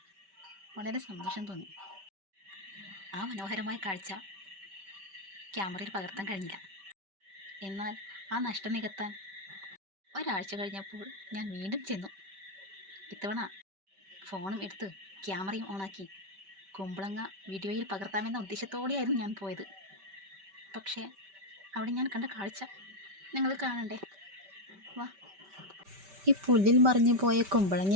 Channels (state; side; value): late; left; 5.1 ms